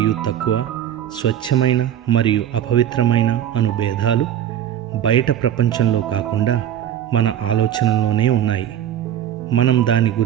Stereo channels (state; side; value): quieter; left; 10.6 dB